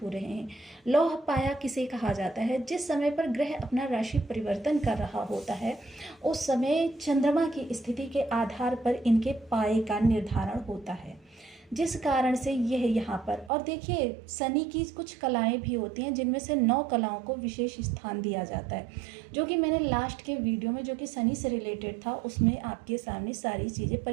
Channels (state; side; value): drops out; left; at 13.5 s